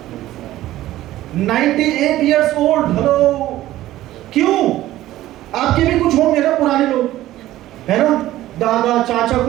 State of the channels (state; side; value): quieter; left; 14.9 dB